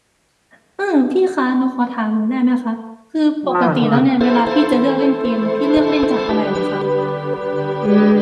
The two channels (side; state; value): both; identical; correlation 1.00